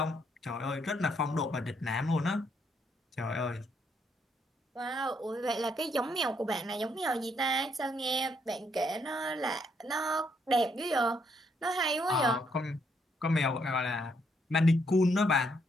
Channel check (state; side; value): normal; both; correlation 0.73